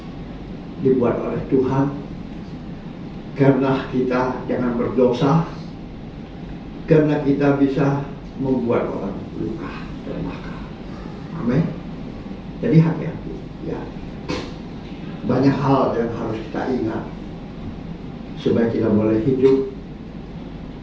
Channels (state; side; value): identical; both; correlation 1.00